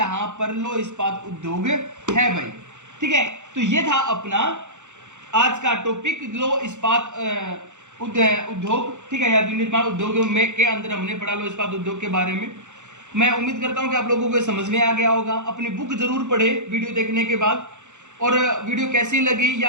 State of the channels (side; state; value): left; late; 0.84 ms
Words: पर लौह इस्पात उद्योग है भाई। ठीक है, तो ये था अपना आज का टॉपिक लौह इस्पात उद्योग। ठीक है, या विनिर्माण उद्योग में के अंदर हमने पढ़ा लौह इस्पात उद्योग के बारे में। मैं उम्मीद करता हूं कि आप लोगों को समझ में आ गया होगा। अपनी बुक जरूर पढ़े वीडियो देखने के बाद, और वीडियो कैसी लगी